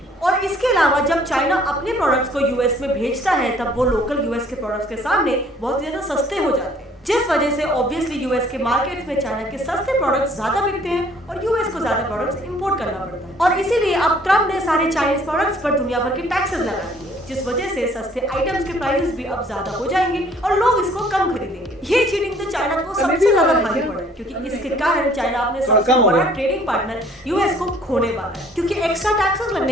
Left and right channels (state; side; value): normal; both; correlation 0.58